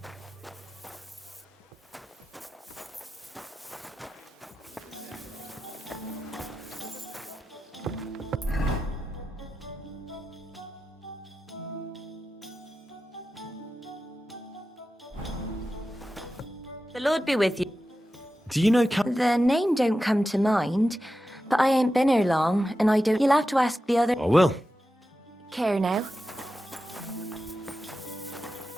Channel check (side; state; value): both; normal; correlation 0.92